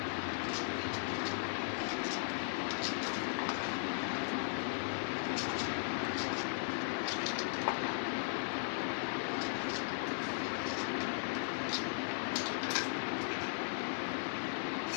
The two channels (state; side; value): silent; right; digital silence